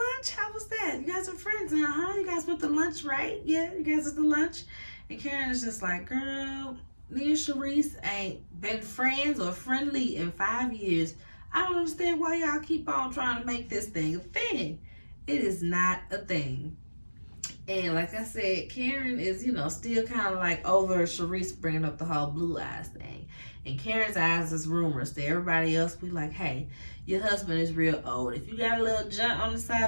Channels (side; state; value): both; inverted; correlation -1.00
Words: How was that? You guys are friends now, huh? You guys went to lunch, right? Yeah, you guys went to lunch. And Karen is just like, girl, me and Sharice ain't been friends or friendly in 5 years. I don't understand why y'all keep on trying to make this thing a thing. It is not a thing. And like I said, Karen is, still kind of like over Sharice bringing up the whole blue eyes thing. And Karen's eyes is rumors to everybody else. Be like, hey, your husband is real old. If you got a little junk on the